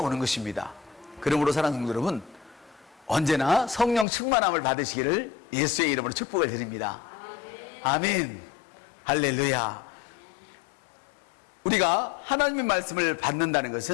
것입니다. 그러므로 사랑하는 성도 여러분, 언제나 성령 충만함을 받으시기를 예수의 이름으로 축복을 드립니다. 아멘. 할렐루야. 우리가 하나님의 말씀을 받는다는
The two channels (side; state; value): right; drops out; at 4.0 s